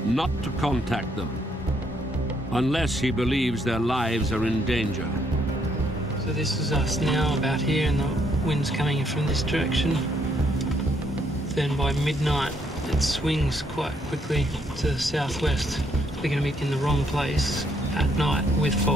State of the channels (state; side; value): normal; both; correlation 0.72